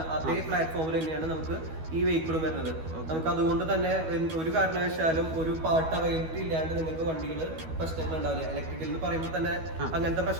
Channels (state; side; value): late; left; 12 ms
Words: അതേ പ്ലാറ്റ്ഫോമിൽ തന്നെയാണ് നമുക്ക് ഈ വെഹിക്കിളും വരുന്നത്. നമുക്ക് അതുകൊണ്ട് തന്നെ ഒരു കാരണവശാലും ഒരു പാർട്ട് അവൈലബിലിറ്റി ഇല്ലാണ്ട് നിങ്ങൾക്ക് വണ്ടികൾ പ്രശ്നങ്ങൾ ഉണ്ടാവില്ല. ഇലക്ട്രിക്കൽ എന്ന് പറയുമ്പോൾ തന്നെ അങ്ങനത്തെ